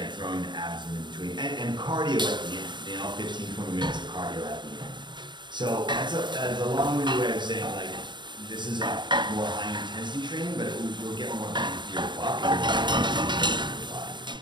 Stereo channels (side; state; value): left; late; 0.22 ms